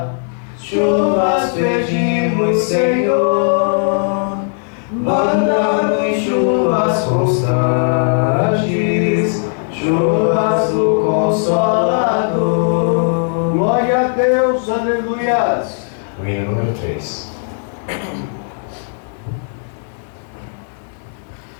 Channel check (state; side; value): silent; right; digital silence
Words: chuvas pedimos, Senhor. Manda-nos chuvas constantes, chuvas Glória a Deus, aleluias. O hino número 3.